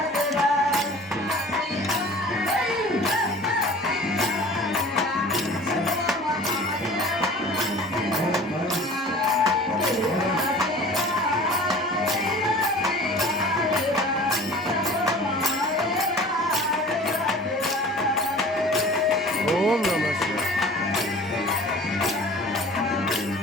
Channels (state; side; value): normal; both; correlation 0.43